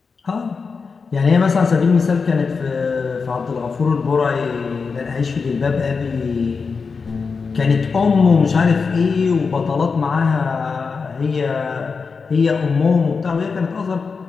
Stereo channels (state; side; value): quieter; right; 5.0 dB